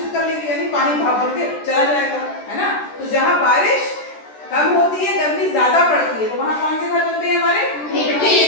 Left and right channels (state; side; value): late; right; 13 ms